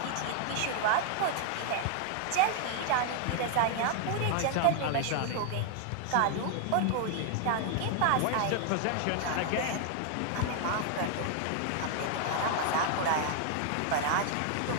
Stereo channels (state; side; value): different; both; correlation 0.00